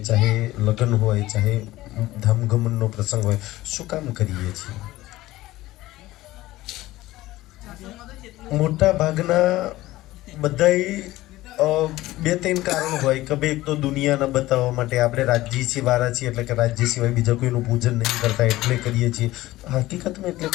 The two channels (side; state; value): right; quieter; 17.1 dB